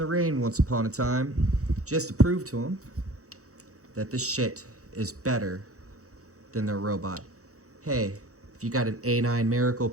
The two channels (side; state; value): left; late; 0.65 ms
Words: rain once upon a time just to prove to them that this shit is better than their robot. Hey, if you got an A9 Miracle